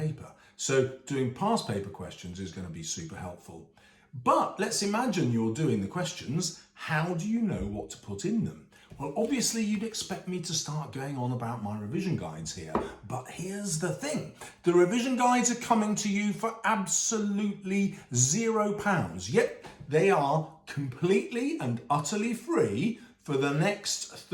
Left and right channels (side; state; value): both; identical; correlation 1.00